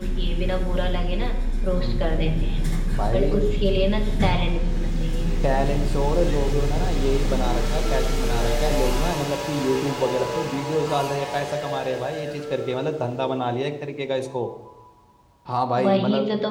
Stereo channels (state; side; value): identical; both; correlation 1.00